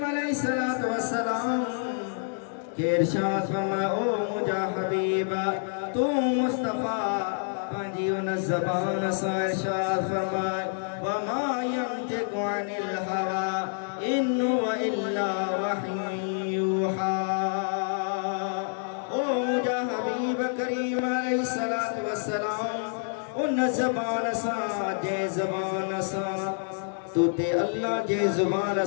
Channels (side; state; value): right; silent; digital silence